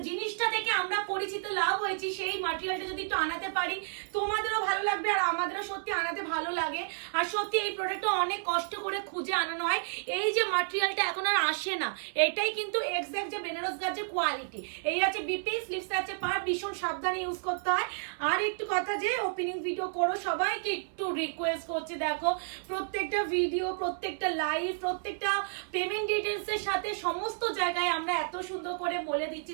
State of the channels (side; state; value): left; silent; 57 dB below the other